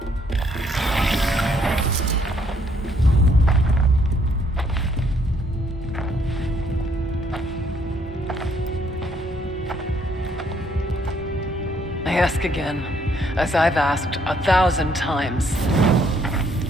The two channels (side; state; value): both; normal; correlation 0.68